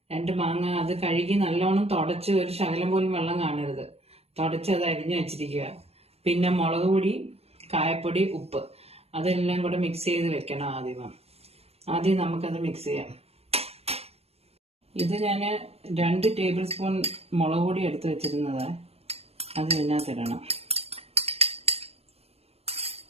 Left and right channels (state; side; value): late; left; 0.29 ms